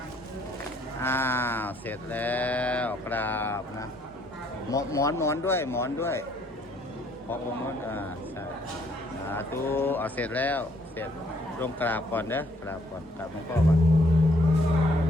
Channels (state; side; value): normal; both; correlation 0.66